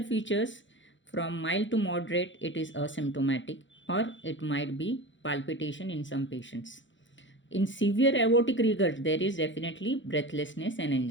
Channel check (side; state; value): right; late; 0.54 ms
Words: features: from mild to moderate, it is asymptomatic, or it might be palpitation in some patients. In severe aortic regurg, there is definitely breathlessness and